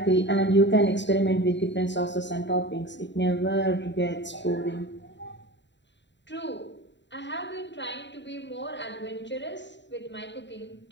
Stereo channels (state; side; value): late; right; 0.52 ms